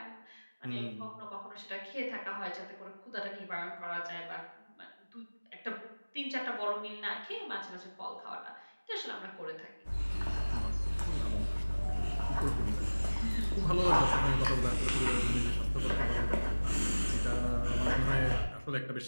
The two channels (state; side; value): inverted; both; correlation -1.00